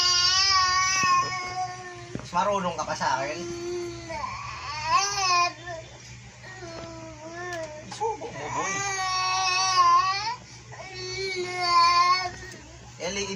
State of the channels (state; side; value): identical; both; correlation 1.00